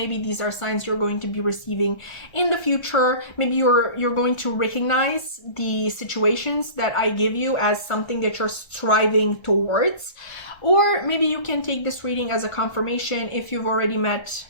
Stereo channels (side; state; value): right; late; 1.3 ms